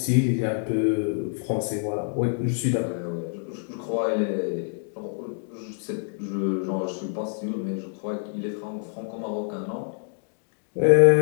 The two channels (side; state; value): right; silent; digital silence